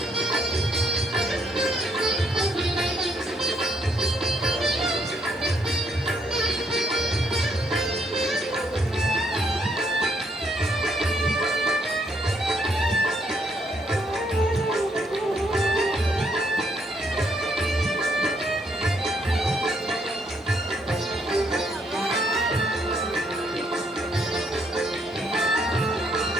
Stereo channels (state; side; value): normal; both; correlation 0.72